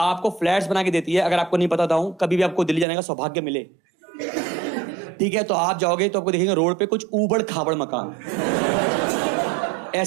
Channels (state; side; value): drops out; left; at 2.9 s